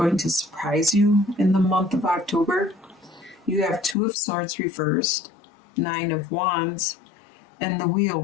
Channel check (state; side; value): drops out; right; at 4.0 s